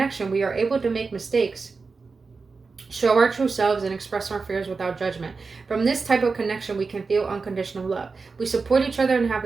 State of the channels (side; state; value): left; quieter; 4.5 dB